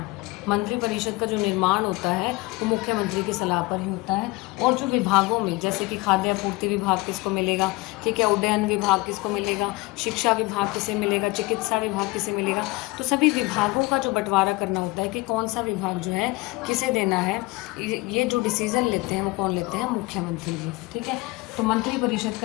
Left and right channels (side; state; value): right; quieter; 22.3 dB